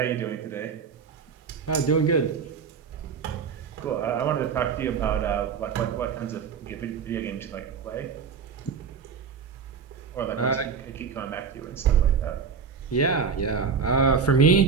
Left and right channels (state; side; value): quieter; left; 6.0 dB